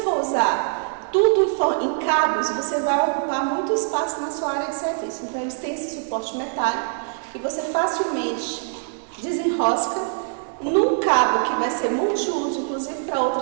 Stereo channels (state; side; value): silent; left; 63 dB below the other